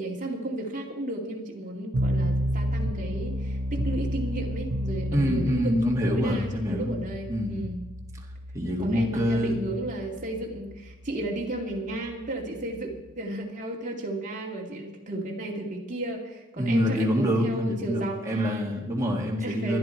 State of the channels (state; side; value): normal; both; correlation 0.71